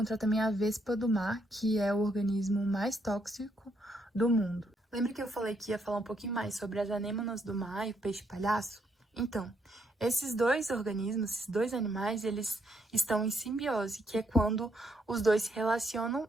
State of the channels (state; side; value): normal; both; correlation 0.75